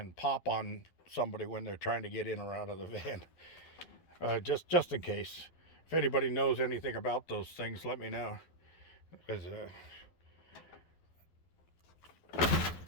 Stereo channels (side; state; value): right; late; 12 ms